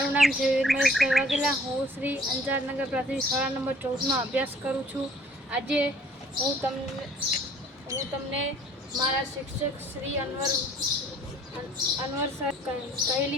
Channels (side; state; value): both; normal; correlation 0.55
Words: નામ છે વીર મહેશભાઈ વાઘેલા. હું શ્રી અંજારનગર પ્રાથમિક શાળા નંબર 14માં અભ્યાસ કરું છું. આજે હું તમને મારા શિક્ષક શ્રી અનવર સર